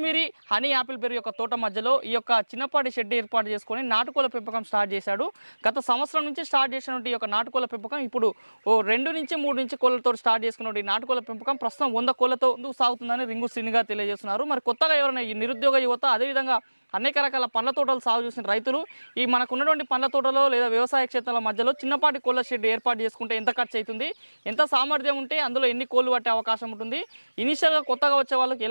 హనీ యాపిల్ బెర్రీ యొక్క తోట మధ్యలో ఈ యొక్క చిన్నపాటి షెడ్ ఏర్పాటు చేసుకొని నాటుకోళ్ళ పెంపకం స్టార్ట్ చేశాడు. గత సంవత్సరం నుంచి స్టార్ట్ చేసినటువంటి ఈ యొక్క నాటుకోళ్ళ పెంపకం ఇప్పుడు 2 నుంచి 3 నుంచి కోళ్ళతో స్టార్ట్ చేసుకున్నటువంటి నాటుకోళ్ళ పెంపకం ప్రస్తుతం 100 కోళ్ళతో సాగుతుందని రింగు శ్రీని గారు తెలియజేస్తున్నారు. మరి కొత్తగా ఎవరైనా ఈ నిరుద్యోగ యువత, అదేవిధంగా అనేక రకాల పండ్ల తోటలు సాగు చేసిన రైతులు ఈ మనకున్నటువంటి పండ్ల తోటలో లేదా వ్యవసాయ క్షేత్రాల మధ్యలో చిన్నపాటి కోళ్ళ షెడ్ ఏర్పాటు చేసుకుంటే ఎంత ఖర్చు అవుతుంది, ఎంత సామర్థ్యం ఉంటే అందులో ఎన్ని కోళ్ళు పట్టే అవకాశం ఉంటుంది, ఇనిషియల్గా కొత్తగా వచ్చే వాళ్ళకి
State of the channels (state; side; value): inverted; both; correlation -1.00